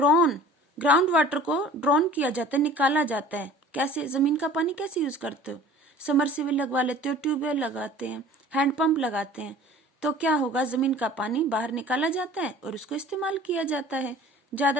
ग्राउंड वाटर को ड्रॉन किया जाता है, निकाला जाता है। कैसे, जमीन का पानी कैसे यूज करते हो, समरसीबल लगवा लेते हो, ट्यूबवेल लगाते हैं, हैंडपंप लगाते हैं, तो क्या होगा, जमीन का पानी बाहर निकाला जाता है और उसको इस्तेमाल किया जाता है।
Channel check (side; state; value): both; normal; correlation 0.45